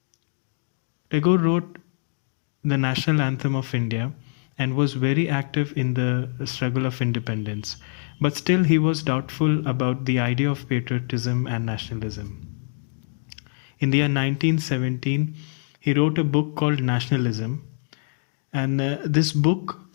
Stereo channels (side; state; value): right; silent; digital silence